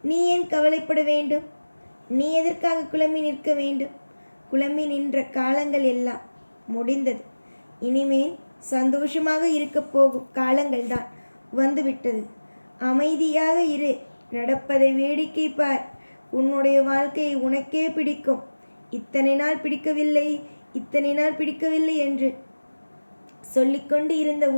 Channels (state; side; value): inverted; both; correlation -1.00